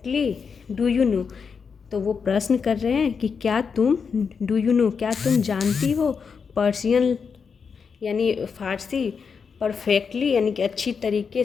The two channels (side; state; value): right; quieter; 5.9 dB